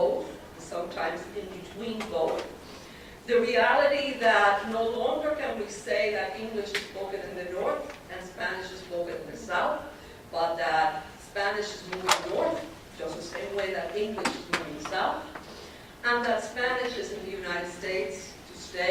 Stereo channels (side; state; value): both; identical; correlation 1.00